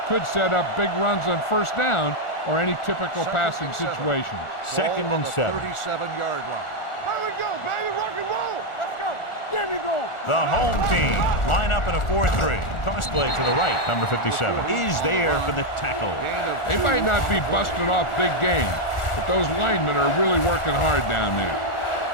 could set up big runs on first down or any typical passing situation. 2nd and 7. 37-yard line. Here we go, baby. Rock and roll. Let's go. Get me going. The home team line up in a 4-3. Toss play to the right. Number 57 is there for the tackle. They might not be busting off big game, but those linemen are really working hard down there.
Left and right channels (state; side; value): late; right; 1.4 ms